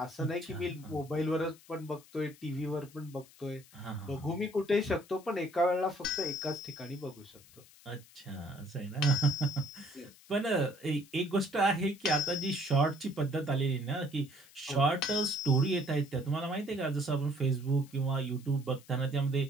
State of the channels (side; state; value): left; noise; hiss, 24 dB below the sound